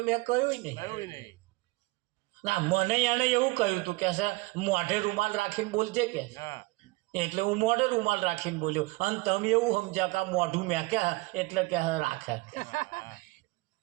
મેં કહ્યું નહીં ના મને એને એવું કહ્યું હતું કે છે મોઢે રૂમાલ રાખીને બોલજે કે એટલે હું મોઢે રૂમાલ રાખીને બોલ્યો અને તમે એવું સમજ્યા કે મોઢું મેં કે એટલે કે રાખે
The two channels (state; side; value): quieter; left; 23.4 dB